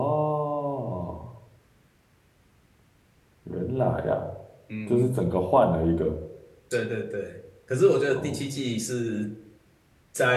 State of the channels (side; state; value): both; identical; correlation 1.00